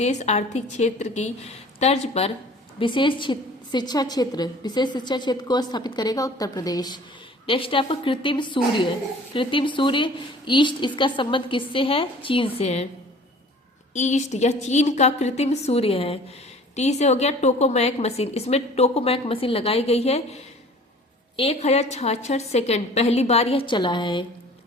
आर्थिक क्षेत्र की तर्ज पर विशेष शिक्षा क्षेत्र को स्थापित करेगा उत्तर प्रदेश। नेक्स्ट आपका कृत्रिम सूर्य ईस्ट, इसका संबंध किससे है? चीन से है। ईस्ट या चीन का कृत्रिम सूर्य है। टी से हो गया टोकोमैक मशीन। इसमें टोकोमैक मशीन लगाई गई है। 1066 सेकेंड पहली बार यह चला है।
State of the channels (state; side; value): normal; both; correlation 0.48